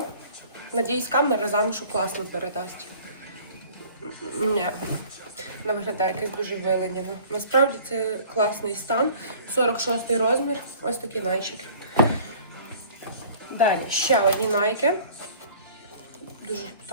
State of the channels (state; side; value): inverted; both; correlation -0.49